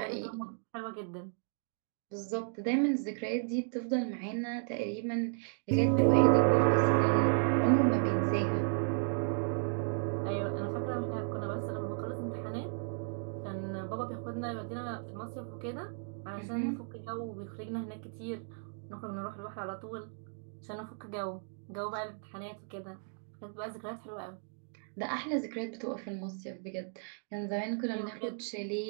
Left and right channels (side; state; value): left; silent; 55 dB below the other